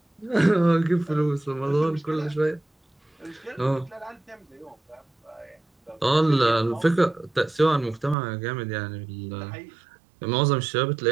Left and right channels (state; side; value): drops out; left; at 8.2 s